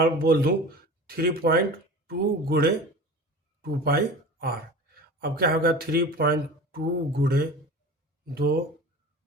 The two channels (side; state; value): both; normal; correlation 0.36